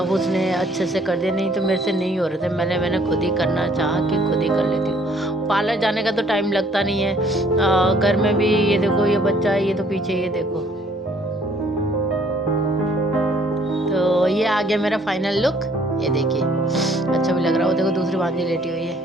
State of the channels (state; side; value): normal; both; correlation 0.61